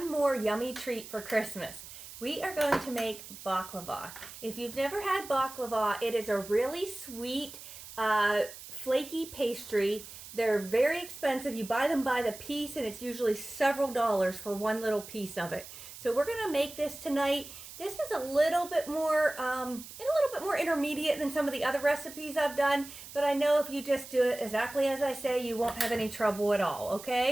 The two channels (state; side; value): noise; right; hiss, 14 dB below the sound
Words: more yummy treat for Christmas. We are going to make baklava. If you've never had baklava, it is a really sweet, flaky pastry. They're very expensive. You buy them by the piece and it's usually several dollars for one little piece of it. So we're going to make this tonight. This is a little bit more intermediate than some of the other recipes I've done, but I know if you just do it exactly as I say, you won't have any trouble at all,